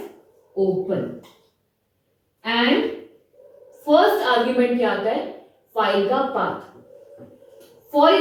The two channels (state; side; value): identical; both; correlation 1.00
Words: open. And first argument क्या आता है, फाइल का पाथ। फॉर